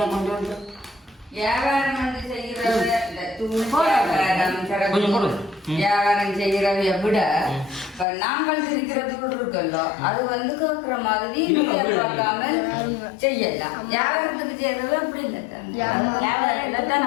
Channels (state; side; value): drops out; right; at 8.1 s